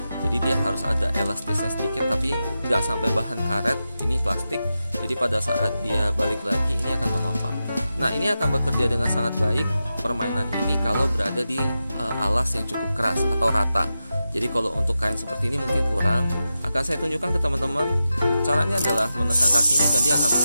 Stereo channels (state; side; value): inverted; both; correlation -0.91